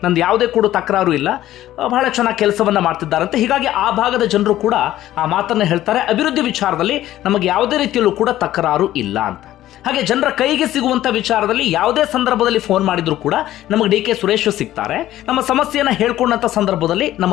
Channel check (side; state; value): right; quieter; 13.9 dB